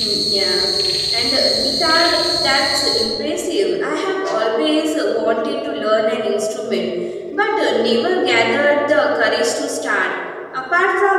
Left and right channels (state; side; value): identical; both; correlation 1.00